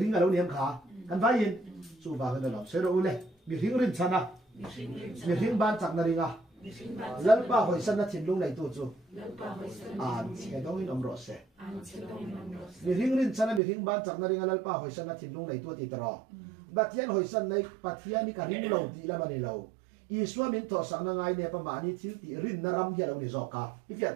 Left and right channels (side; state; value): left; drops out; at 13.6 s